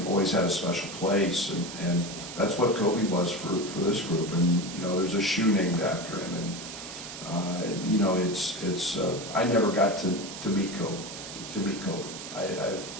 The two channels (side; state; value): right; noise; hiss, 10 dB below the sound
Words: always had a special place, and that's what Kobe was for this group. And you know, there's a shoe named after him, and you know, it's I never got to meet Kobe.